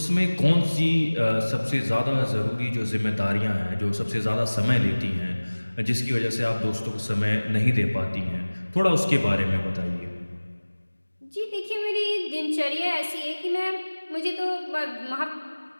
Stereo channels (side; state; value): both; inverted; correlation -1.00